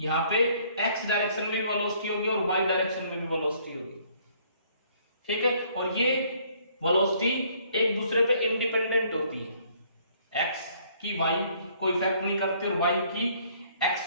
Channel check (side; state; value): both; inverted; correlation -0.62